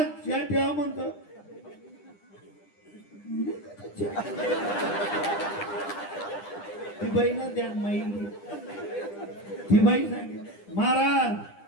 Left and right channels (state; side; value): late; right; 9.9 ms